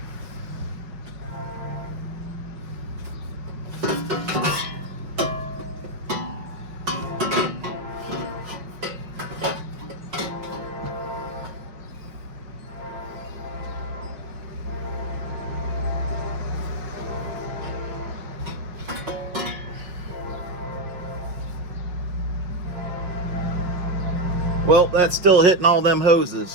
Well, that's still hitting all them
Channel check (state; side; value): late; left; 5.5 ms